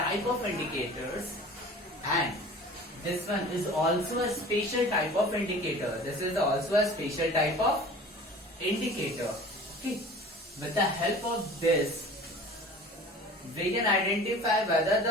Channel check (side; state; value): both; normal; correlation 0.42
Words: of indicators, and this one is also a special type of indicator. This is also a special type of indicator. Okay. With the help of this, we can identify whether